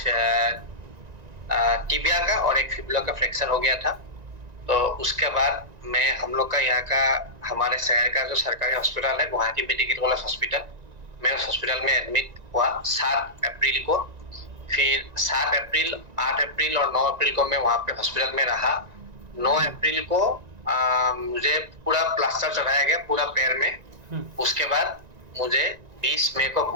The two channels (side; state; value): left; late; 1.9 ms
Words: टिबिया का और एक फिबुला का फ्रैक्चर हो गया था। तो उसके बाद मैं हम लोग का यहाँ का हमारे शहर का जो सरकारी हॉस्पिटल है गुवाहाटी मेडिकल कॉलेज हॉस्पिटल, मैं उस हॉस्पिटल में एडमिट हुआ 7 अप्रैल को। फिर 7 अप्रैल, 8 अप्रैल और 9 अप्रैल को मैं वहां पे हॉस्पिटल में रहा। 9 अप्रैल को मुझे पूरा प्लास्टर चढ़ाया गया पूरा पैर में। हम्म। उसके बाद मुझे 20 मई को